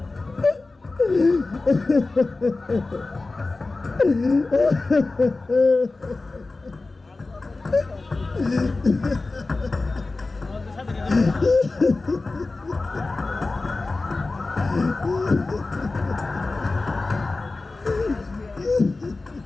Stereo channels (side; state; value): right; quieter; 3.4 dB